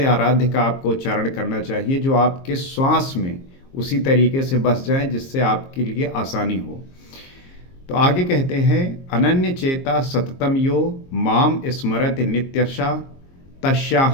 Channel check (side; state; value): right; late; 22 ms